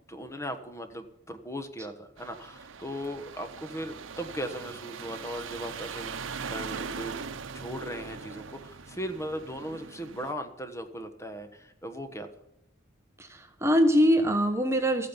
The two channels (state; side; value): normal; both; correlation 0.67